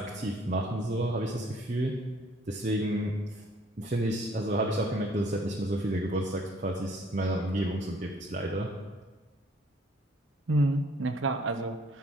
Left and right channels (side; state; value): both; normal; correlation 0.60